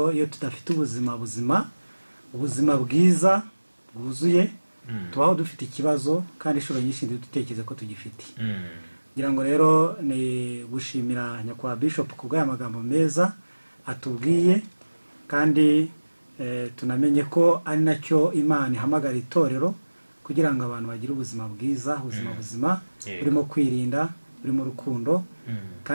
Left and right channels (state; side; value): inverted; both; correlation -1.00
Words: iyo tudafite ubuzima bwiza bwuzuye, tubaho dufite ikibazo, kandi inshuro nyinshi dutekereza ko tugifite. Ngira ngo rero ni gushimira nyakwa Bishop kubw'aya magambo meza atubwiye, kandi tunamenye ko ari nacyo Imana ihamagara itorero, kugira ngo abantu bagire ubuzima bwiza, ubuzima buzima burimo kwirinda, burimo urukundo.